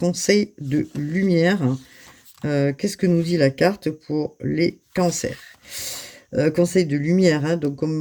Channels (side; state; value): both; identical; correlation 1.00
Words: de lumière. Qu'est-ce que nous dit la carte pour les cancers? Conseil de lumière, hein, donc